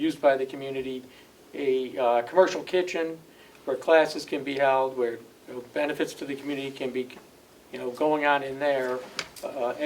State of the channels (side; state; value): both; identical; correlation 1.00